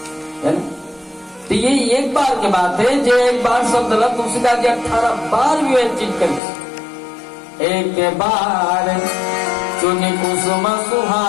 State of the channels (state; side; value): drops out; right; at 6.4 s